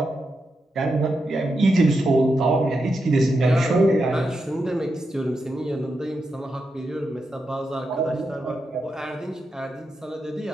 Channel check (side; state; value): both; normal; correlation 0.86